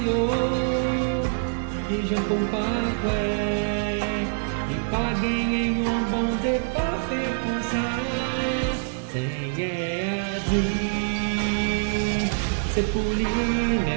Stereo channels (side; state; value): left; silent; 59 dB below the other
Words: que j'aime comparer, et pas gagner un bon Dieu pas faire pour ça. Seigneur a dit, c'est pour lui